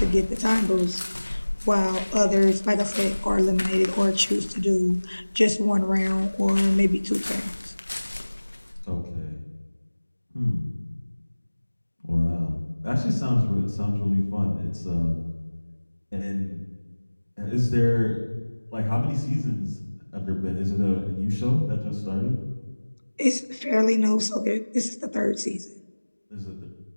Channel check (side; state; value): both; inverted; correlation -1.00